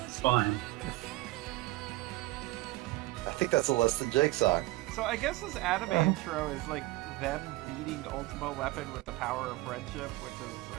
It's fine. I think that's a Less Than Jake song. So I guess this anime intro is like them beating Ultima Weapon with the power of friendship, which is,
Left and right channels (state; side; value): quieter; left; 19.3 dB